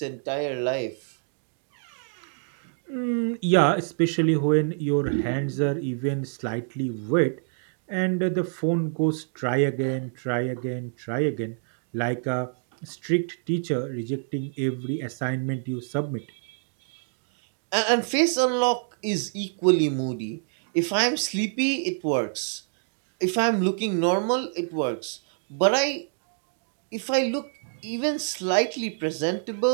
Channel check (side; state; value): left; silent; digital silence